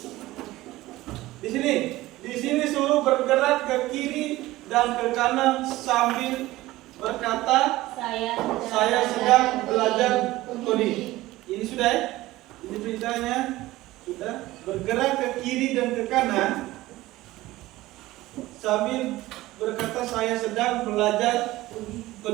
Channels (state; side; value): quieter; left; 17.5 dB